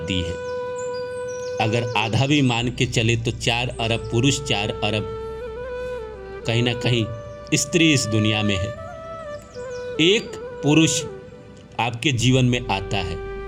है। अगर आधा भी मान के चले तो 4 अरब पुरुष, 4 अरब कहीं ना कहीं स्त्री इस दुनिया में है। एक पुरुष आपके जीवन में आता है,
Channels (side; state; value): both; identical; correlation 1.00